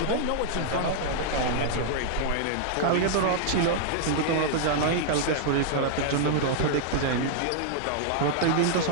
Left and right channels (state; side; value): different; both; correlation -0.01